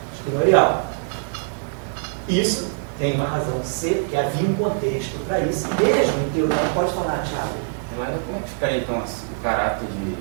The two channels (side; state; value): left; silent; 63 dB below the other